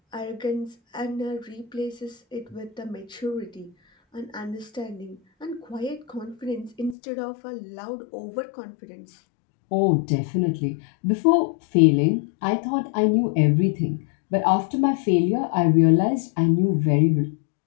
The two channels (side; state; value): right; drops out; at 7.0 s